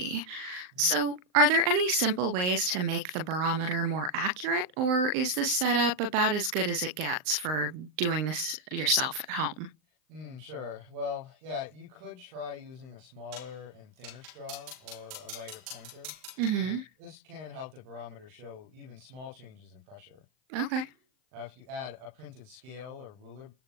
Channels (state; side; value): late; left; 39 ms